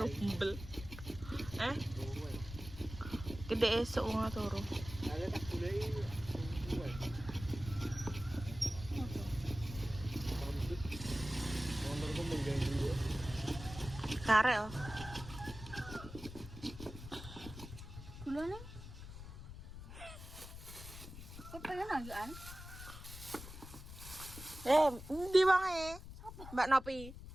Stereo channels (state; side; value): noise; left; rumble, 12 dB below the sound